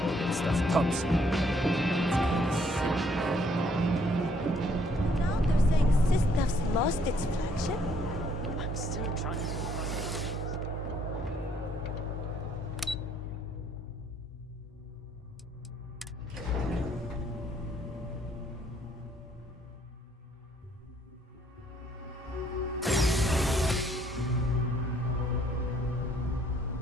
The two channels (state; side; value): normal; both; correlation 0.66